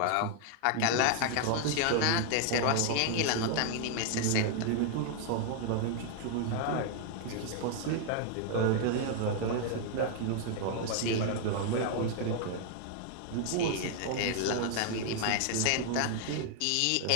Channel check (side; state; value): both; different; correlation 0.00